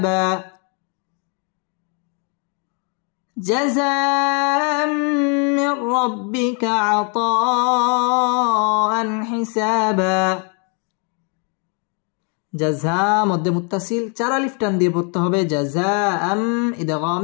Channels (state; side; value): quieter; right; 38.5 dB